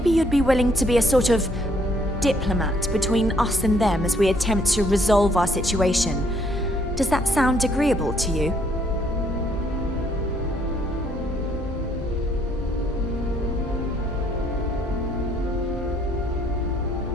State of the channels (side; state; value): both; normal; correlation 0.67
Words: you'd be willing to be a sort of diplomat between us and them as we attempt to resolve our situation. Does that sound agreeable to you?